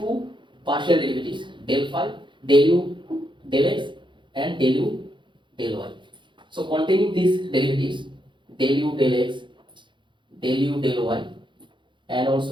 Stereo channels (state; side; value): late; left; 0.23 ms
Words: partial derivatives, del phi, del u, del x, and del u, del y. So containing these derivatives, del u, del x, del u, del y, and